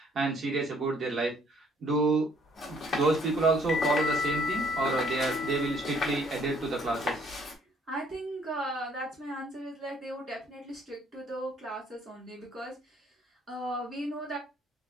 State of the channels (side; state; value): both; normal; correlation 0.63